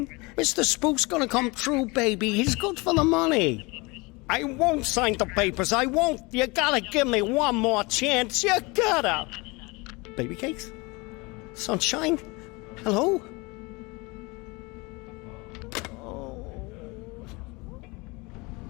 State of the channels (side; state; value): right; quieter; 25.8 dB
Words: Mr. Spook's gonna come true, baby. He's good for the money. I won't sign the papers. I won't. You gotta give me one more chance. You gotta. Baby cakes? Sunshine? Hello?